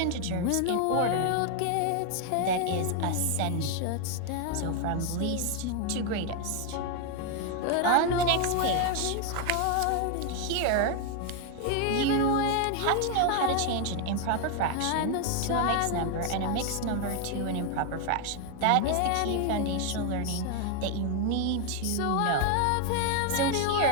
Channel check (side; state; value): both; different; correlation 0.00